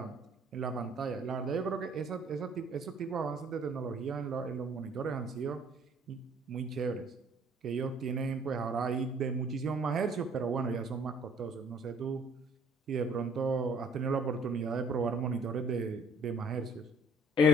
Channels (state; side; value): normal; both; correlation 0.59